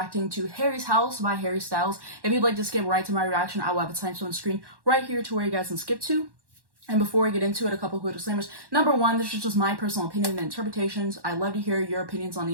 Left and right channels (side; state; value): left; late; 1.1 ms